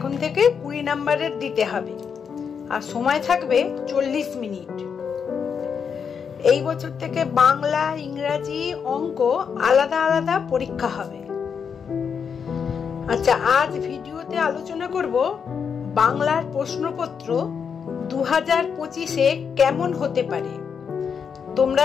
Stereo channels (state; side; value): quieter; right; 6.7 dB